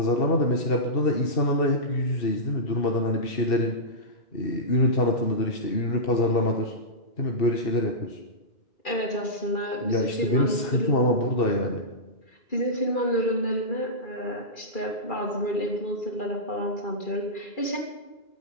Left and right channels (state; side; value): late; right; 2.4 ms